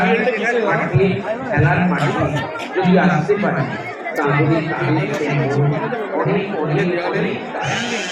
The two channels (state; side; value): identical; both; correlation 1.00